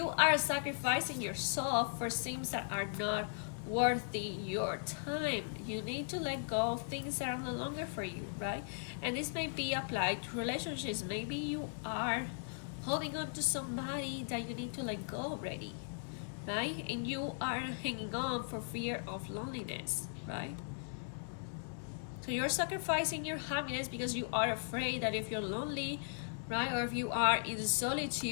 are sacrificing yourself for things that are not worthy your time. You need to let go of things that are no longer for you, right? And this may be applied to relationships. Maybe you are holding on to somebody that you need to let go already, right? And you are hanging on for fear of loneliness, right? So you're sacrificing your happiness because you are afraid that if you're lonely, right, or if you are in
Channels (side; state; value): right; silent; digital silence